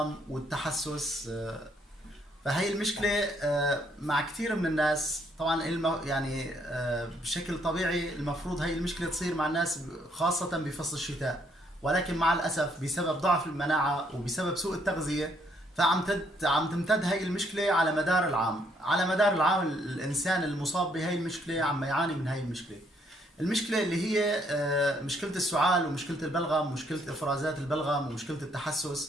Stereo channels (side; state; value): both; normal; correlation 0.69